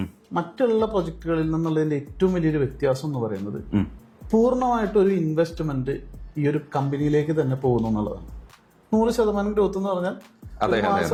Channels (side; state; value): both; identical; correlation 1.00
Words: മറ്റുള്ള പ്രൊജക്ടുകളിൽ നിന്നുള്ളതിന്റെ ഏറ്റവും വലിയൊരു വ്യത്യാസം എന്ന് പറയുന്നത് പൂർണ്ണമായിട്ടൊരു ഇൻവെസ്റ്റ്മെന്റ് ഈ ഒരു കമ്പനിയിലേക്ക് തന്നെ പോകുന്നു എന്നുള്ളതാണ്. 100% ഗ്രോത്ത് എന്ന് പറഞ്ഞാൽ